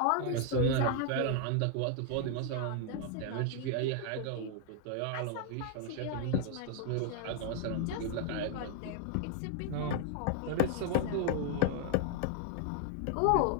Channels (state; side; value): different; both; correlation 0.00